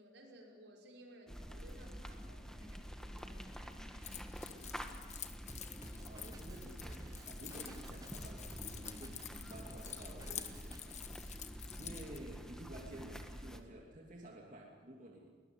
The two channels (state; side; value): normal; both; correlation 0.64